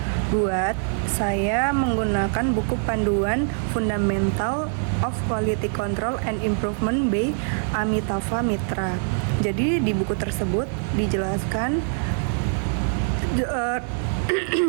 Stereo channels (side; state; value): left; silent; 63 dB below the other